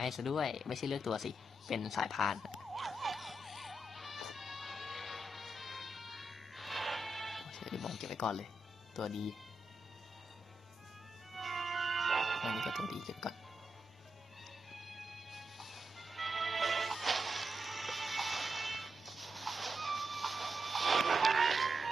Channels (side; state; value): both; normal; correlation 0.86